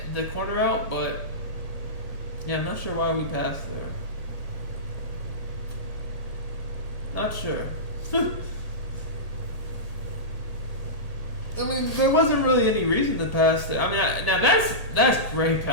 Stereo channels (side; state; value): right; late; 1.7 ms